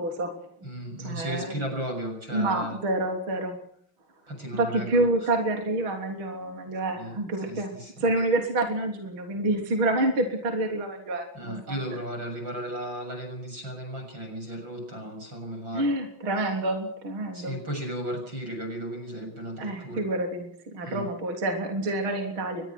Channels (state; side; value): late; left; 5.8 ms